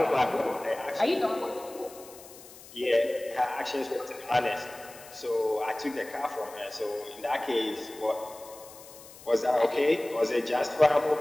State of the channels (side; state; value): left; noise; hiss, 19 dB below the sound